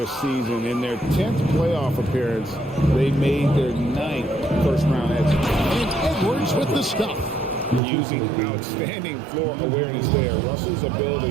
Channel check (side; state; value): left; drops out; at 7.8 s